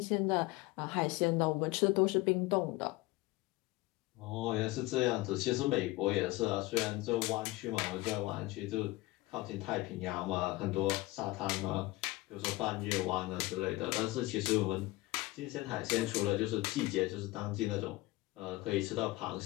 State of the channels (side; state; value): right; quieter; 20.0 dB